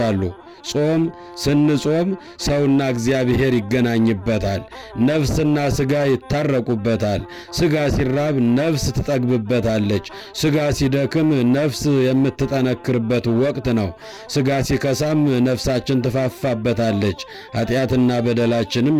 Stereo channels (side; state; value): both; identical; correlation 1.00